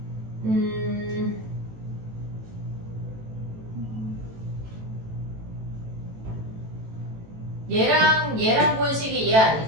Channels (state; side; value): late; left; 18 ms